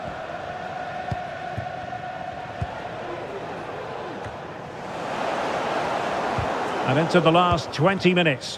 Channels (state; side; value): identical; both; correlation 1.00